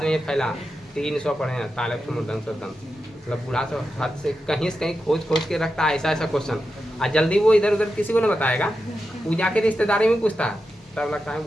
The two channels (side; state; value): both; normal; correlation 0.89